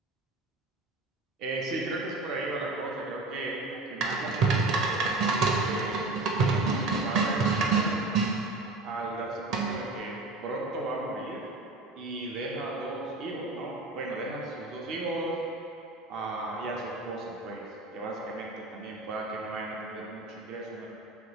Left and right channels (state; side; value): quieter; left; 3.0 dB